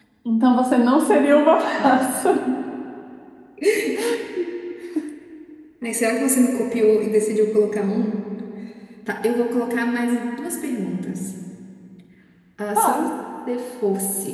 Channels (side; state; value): both; identical; correlation 1.00